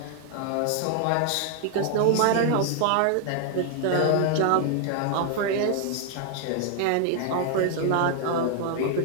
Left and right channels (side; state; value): both; different; correlation 0.00